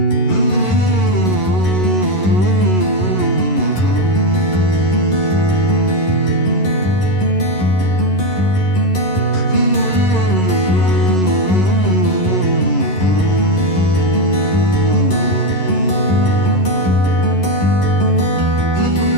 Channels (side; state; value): right; late; 11 ms